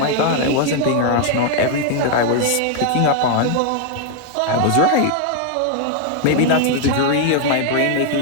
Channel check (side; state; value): both; different; correlation 0.00